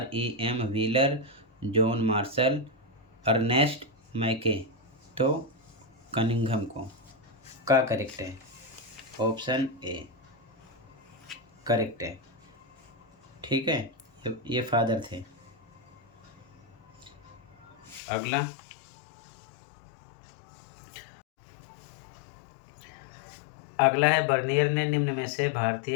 Wheeler, John Marshall, Ernest Mackay. तो कनिंघम को का करेक्ट है, ऑप्शन ए करेक्ट है। ठीक है, ये फादर थे। अगला, अगला है, बर्नियर ने निम्न में से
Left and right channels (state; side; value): drops out; right; at 18.0 s